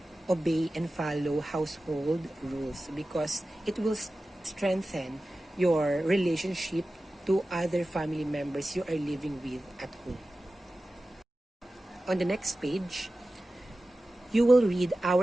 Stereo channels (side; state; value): both; normal; correlation 0.95